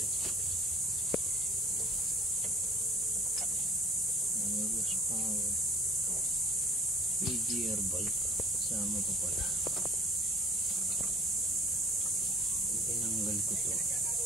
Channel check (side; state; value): both; normal; correlation 0.53